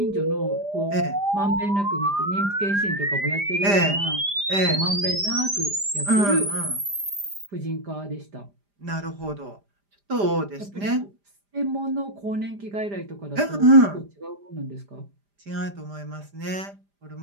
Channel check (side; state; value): left; late; 5.0 ms